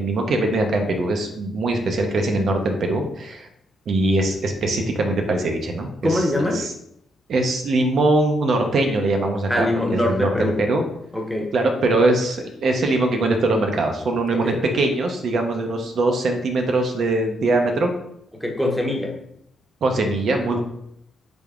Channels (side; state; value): both; normal; correlation 0.76